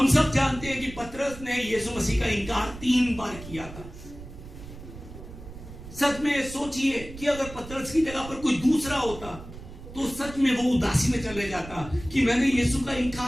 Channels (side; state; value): right; noise; rumble, 14 dB below the sound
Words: सब जानते हैं कि पतरस ने यीशु मसीह का इनकार 3 बार किया था। सच में सोचिए कि अगर पतरस की जगह पर कोई दूसरा होता तो सच में वो उदासी में चले जाता कि मैंने यीशु का